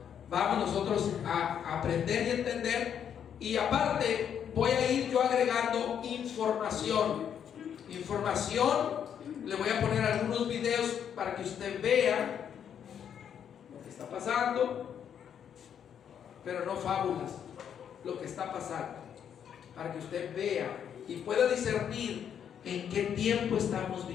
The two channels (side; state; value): right; quieter; 8.6 dB